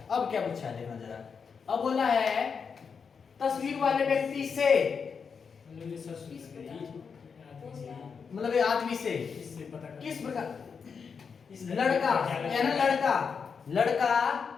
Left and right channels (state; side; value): quieter; right; 6.0 dB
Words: अब क्या पूछा है देखना जरा। अब बोला है तस्वीर वाले व्यक्ति से, मतलब ये आदमी से किस प्रकार, लड़का है ना, लड़का।